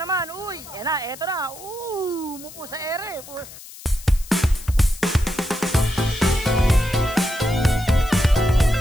naman. Uy, eto na. Mupo sa ere.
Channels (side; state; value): left; noise; hiss, 17 dB below the sound